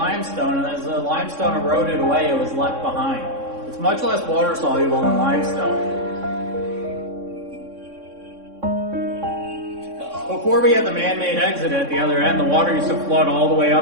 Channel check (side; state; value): left; late; 3.6 ms